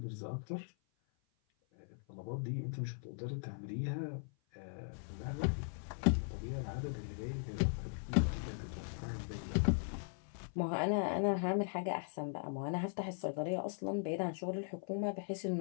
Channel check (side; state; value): right; silent; 52 dB below the other